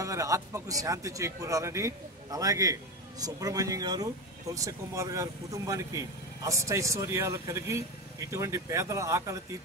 గారి ఆత్మకు శాంతి చేకూరాలని, అలాగే సుబ్రహ్మణ్యం గారు, తులసి కుమార్ గారి కుటుంబానికి అష్టైశ్వర్యాలు కలిగి ఇటువంటి పేదల ఆకలి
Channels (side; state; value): both; normal; correlation 0.20